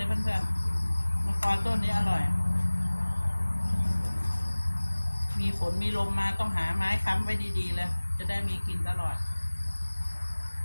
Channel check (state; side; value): inverted; both; correlation -1.00